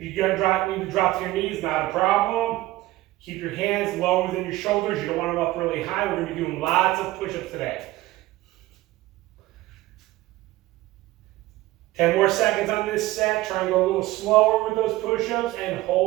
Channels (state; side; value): quieter; left; 17.5 dB